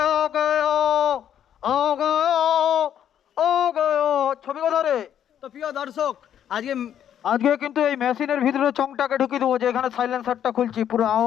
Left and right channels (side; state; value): right; quieter; 9.8 dB